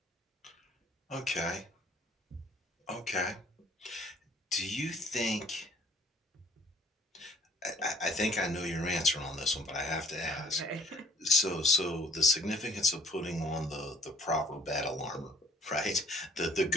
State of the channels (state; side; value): normal; both; correlation 0.56